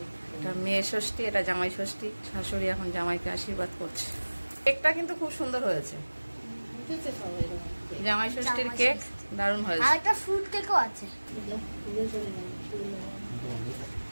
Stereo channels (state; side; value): inverted; both; correlation -1.00